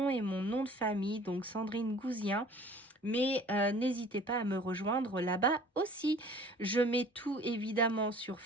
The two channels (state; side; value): normal; both; correlation 0.49